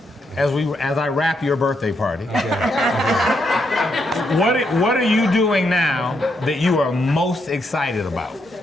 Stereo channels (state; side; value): normal; both; correlation 0.79